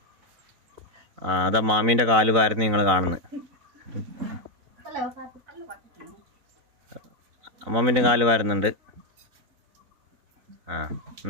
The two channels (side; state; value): left; late; 4.0 ms